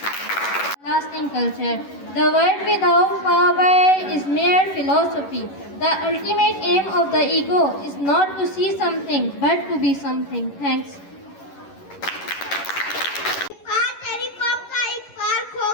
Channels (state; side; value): late; right; 11 ms